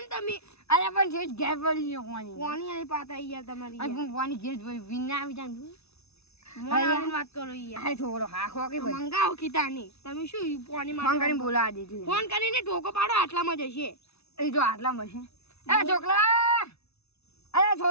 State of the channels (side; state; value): right; late; 0.80 ms